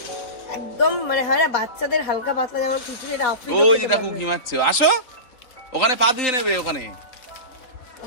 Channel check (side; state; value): right; late; 3.9 ms